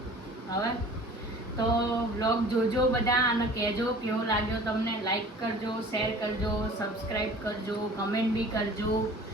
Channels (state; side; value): normal; both; correlation 0.46